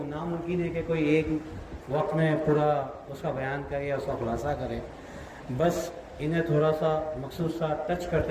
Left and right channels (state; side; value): identical; both; correlation 1.00